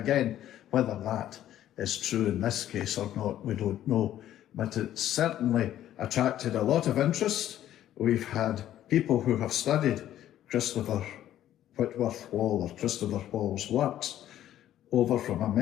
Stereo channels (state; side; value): quieter; right; 12.2 dB